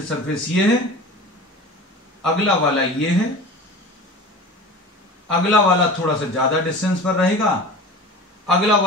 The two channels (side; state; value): both; normal; correlation 0.36